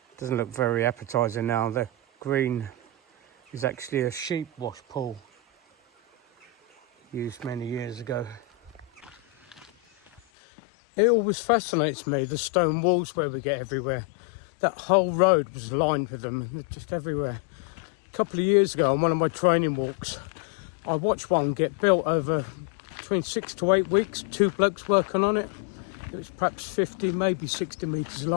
look very appetizing now. The green is actually a sheep wash pool used many years ago. It always fascinates me, the stone walls where we get everywhere. That whole road was lined with them, they're just everywhere. A couple of years ago on one of my training walks, I watched one get built over between 6 to 8 weeks, 2 blokes working on it. It was perhaps 50, maybe 60 metres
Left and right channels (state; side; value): drops out; right; at 10.2 s